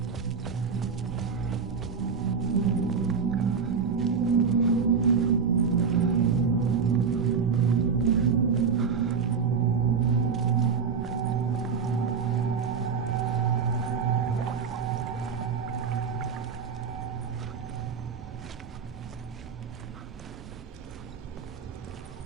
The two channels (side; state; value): left; quieter; 6.0 dB